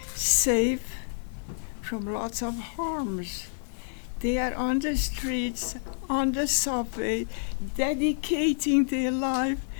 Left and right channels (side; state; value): right; silent; digital silence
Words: safe from lots of harms. They are on the streets, on the subway, dedicating their life